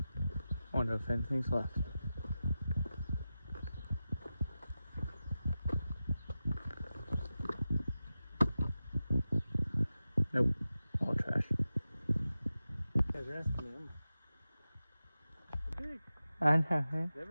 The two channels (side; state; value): both; inverted; correlation -0.93